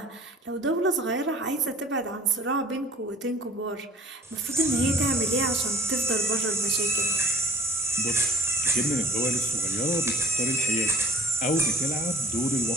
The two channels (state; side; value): normal; both; correlation 0.49